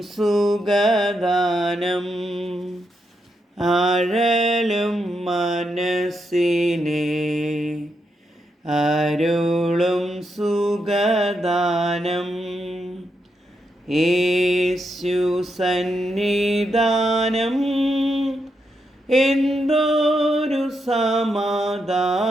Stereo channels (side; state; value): both; normal; correlation 0.82